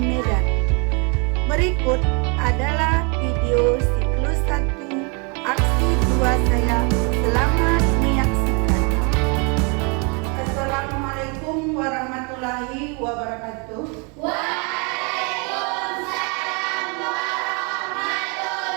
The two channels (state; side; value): quieter; left; 33.7 dB